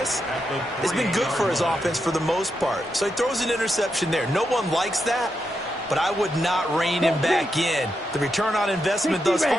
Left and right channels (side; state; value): both; normal; correlation 0.84